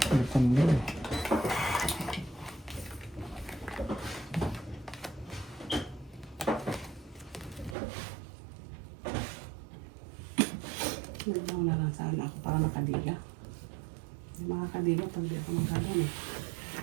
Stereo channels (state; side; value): drops out; left; at 7.8 s